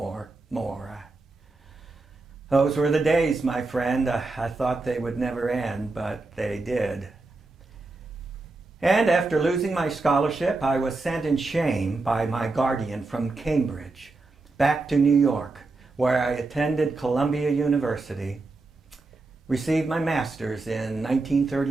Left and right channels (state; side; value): quieter; left; 3.5 dB